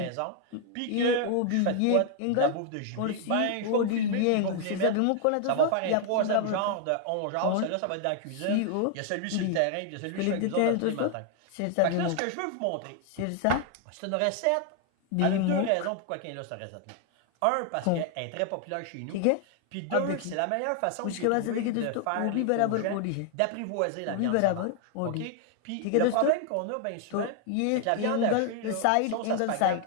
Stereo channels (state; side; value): different; both; correlation 0.00